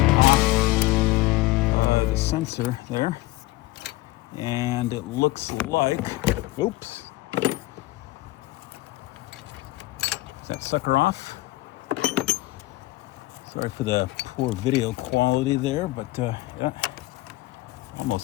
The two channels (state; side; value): quieter; right; 18.8 dB